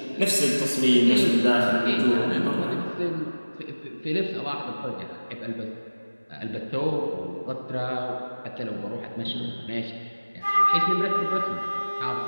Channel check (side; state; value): both; inverted; correlation -1.00